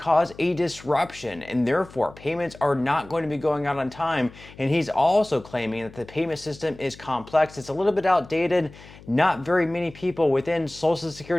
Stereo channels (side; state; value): left; noise; hum, 20 dB below the sound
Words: a disruption, and therefore payments are not going to be going out on time. And he's also claiming that the payment system is complex. It's a little bit outdated. Not very many people within Social